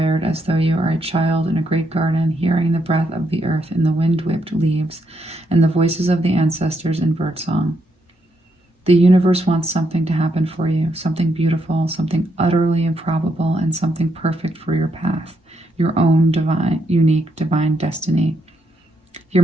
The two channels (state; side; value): normal; both; correlation 0.78